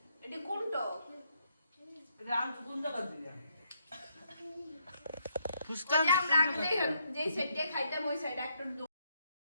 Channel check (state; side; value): inverted; both; correlation -0.75